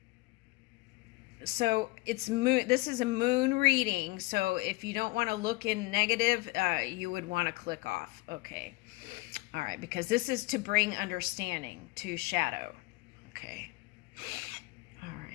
so it's moon. This is a moon reading. So if you don't want to look in negative, you would want to click off. Okay, all right, because this is to bring understanding to shadow. Okay, all right.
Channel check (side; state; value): right; quieter; 22.8 dB